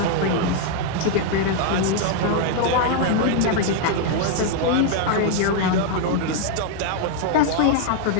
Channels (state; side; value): different; both; correlation 0.00